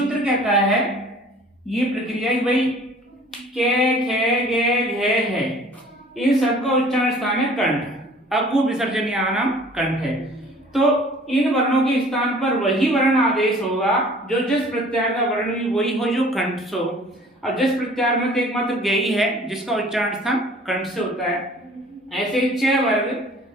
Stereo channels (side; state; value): both; normal; correlation 0.50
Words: कहता है ये प्रक्रिया भाई के, खे, गे, घे है, इन सबका उच्चारण स्थान है कंठ। अगु विसर्जन नाम कंठ है। तो इन वर्णों के स्थान पर वही वर्ण आदेश होगा जो जस प्रत्याहार का वर्ण भी वही हो जो कंठ से हो। अब जस प्रत्याहार में तो एकमात्र गे ही है जिसका उच्चारण स्थान कंठ से होता है। ऐसे च वर्ग